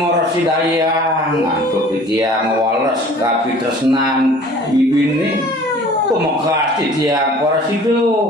antuk titiang wales kapi tresnan ibine pemekas titiang porasido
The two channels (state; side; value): normal; both; correlation 0.48